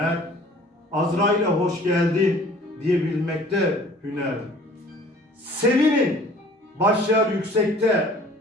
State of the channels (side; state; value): both; normal; correlation 0.51